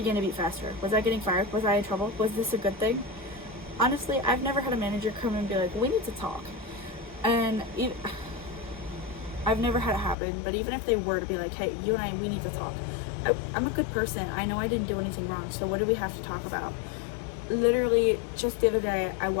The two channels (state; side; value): drops out; right; at 10.2 s